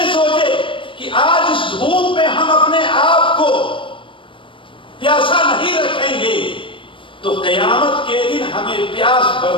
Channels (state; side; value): late; right; 0.25 ms